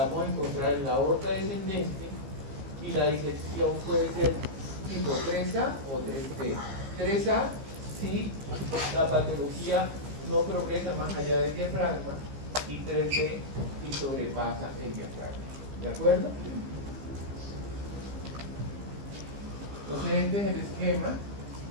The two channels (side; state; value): left; late; 15 ms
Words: vamos a encontrar en la aorta descendente, y la disección puede ser tipo 3A o 3B. 3A si la patología no progresa más allá del diafragma, y 3B si sobrepasa el diafragma. ¿De acuerdo? Entonces este es el esquema